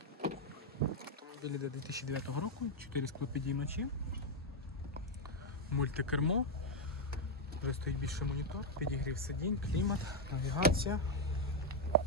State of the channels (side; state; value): both; normal; correlation 0.01